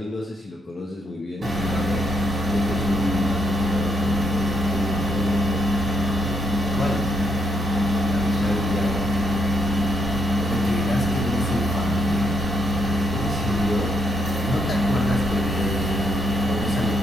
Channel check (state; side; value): normal; both; correlation 0.76